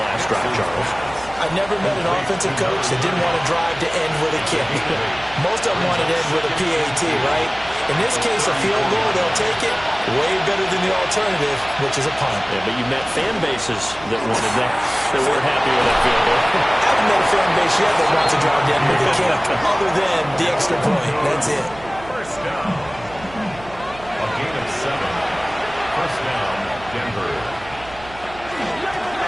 last drive, Charles. I've never met an offensive coach that didn't want to drive to end with a kick. Most of them wanted to end with a PAT, right? In this case, a field goal, they'll take it. Way better than the alternative, which is a punt. Yeah, but you met fan bases that wanted that, that weren't happy with that field goal. I haven't met a fan base yet that wants to drive to end with a kick, other than the extra point. That's it. 1st down. A gain of 7. 1st down, Denver.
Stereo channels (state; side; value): noise; right; hum, 19 dB below the sound